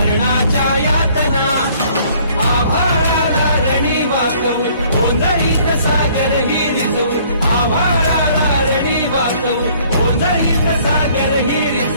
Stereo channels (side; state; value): both; inverted; correlation -0.58